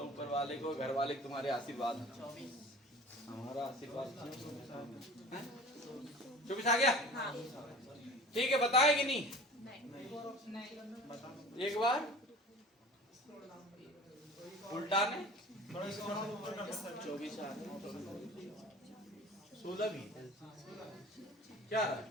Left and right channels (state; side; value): normal; both; correlation 0.41